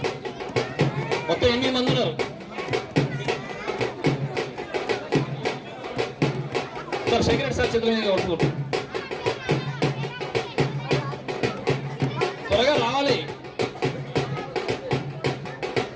మొత్తం 8 మంది ఉన్నారు. సార్ సెక్రటరీ సార్ చేతుల మీద వస్తుంది. త్వరగా రావాలి.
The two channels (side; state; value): both; identical; correlation 1.00